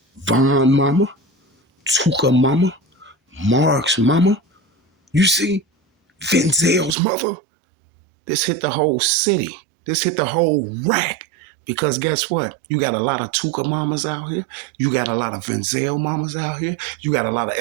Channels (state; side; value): drops out; left; at 7.0 s